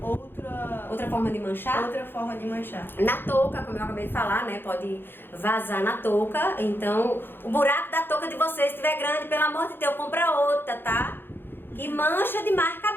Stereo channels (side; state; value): right; late; 0.10 ms